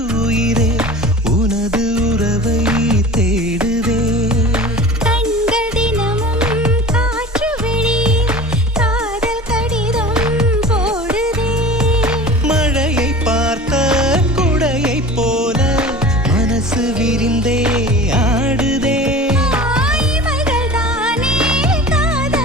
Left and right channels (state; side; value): normal; both; correlation 0.38